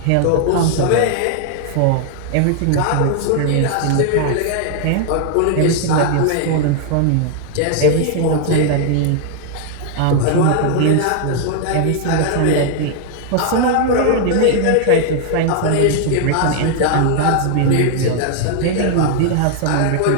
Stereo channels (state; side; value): different; both; correlation 0.00